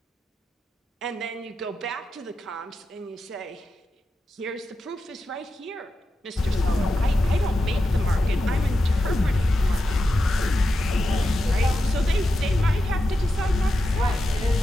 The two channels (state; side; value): normal; both; correlation 0.89